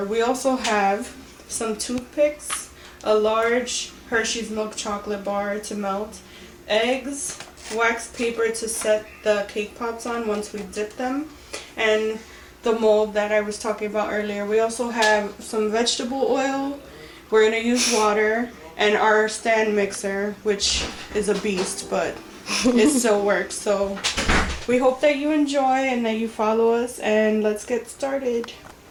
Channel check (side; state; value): both; identical; correlation 1.00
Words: We also have some toothpicks, a large Hershey's milk chocolate bar to melt, eggs, wax paper to set the cake pops on once we dip them, and the mold that I was talking about earlier. We also have some vegetable oil. We're going to use water and our stand mixer, which is a beast, but it still works. So we hope that you enjoy and that you follow us, and let's get started.